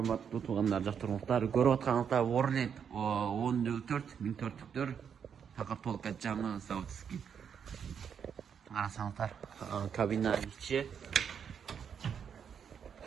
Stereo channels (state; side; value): quieter; left; 7.5 dB